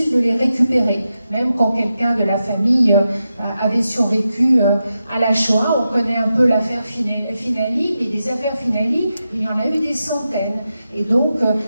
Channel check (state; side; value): inverted; both; correlation -0.89